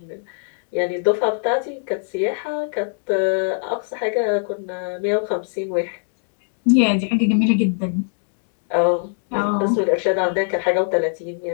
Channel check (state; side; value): silent; right; 61 dB below the other